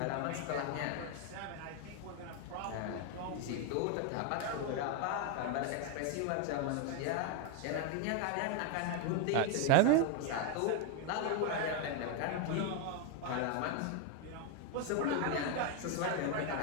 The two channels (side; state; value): both; different; correlation 0.01